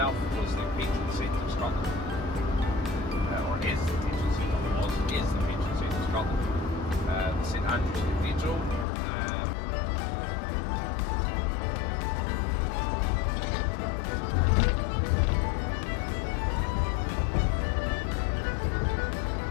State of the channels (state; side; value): drops out; right; at 8.8 s